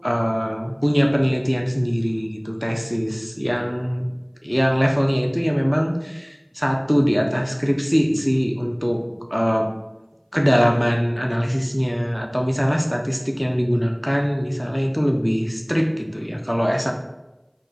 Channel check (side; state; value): both; identical; correlation 1.00